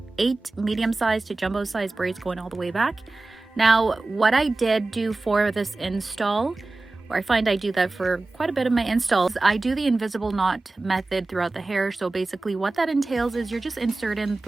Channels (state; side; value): quieter; left; 3.2 dB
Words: 8 medium-sized to jumbo-sized braids going all the way back. Now, what I did do for this install, or I find I do that for quite a bit of my installs, I do the invisible knot method throughout the hair. So basically what that entails is you're just inserting